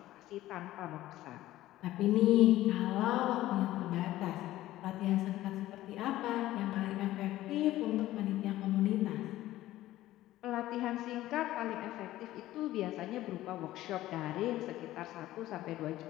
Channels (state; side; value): quieter; right; 15.2 dB